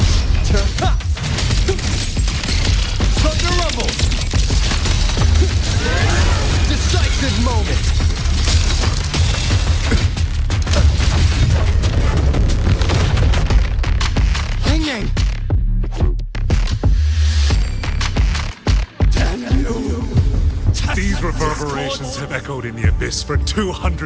Thunder rumble! Decisive moment! Hanging! These reverberations have echoed in the abyss for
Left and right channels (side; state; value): both; identical; correlation 1.00